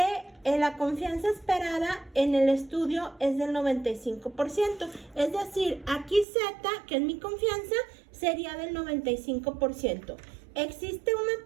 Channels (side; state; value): left; drops out; at 6.2 s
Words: la confianza esperada en el estudio es del 95%. Es decir, aquí Z, que es mi confianza, sería del 95%. Existe una